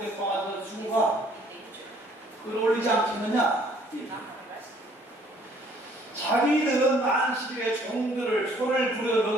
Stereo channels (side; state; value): both; normal; correlation 0.60